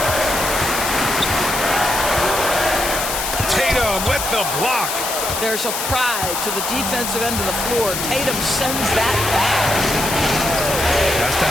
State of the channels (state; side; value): noise; left; hiss, 3 dB below the sound